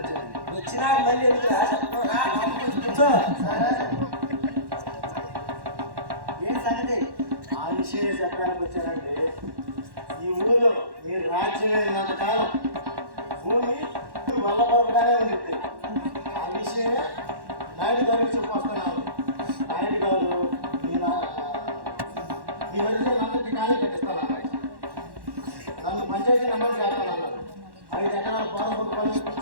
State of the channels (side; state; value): left; late; 1.1 ms